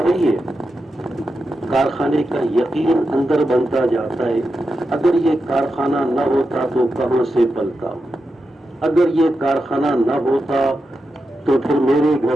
ہے، کارخانے کا یقین اندر بنتا جاتا ہے۔ اگر یہ کارخانہ نہ ہوتا تو کہاں سے پلتا، اگر یہ کارخانہ نہ ہوتا تو پھر میرے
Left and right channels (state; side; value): normal; both; correlation 0.88